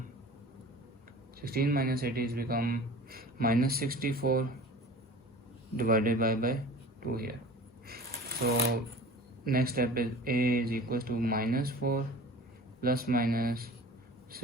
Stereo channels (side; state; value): both; normal; correlation 0.40